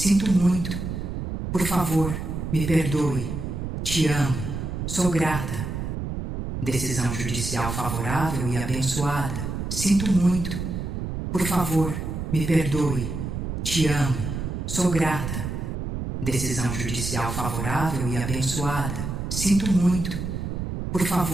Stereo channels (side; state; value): right; noise; rumble, 4 dB below the sound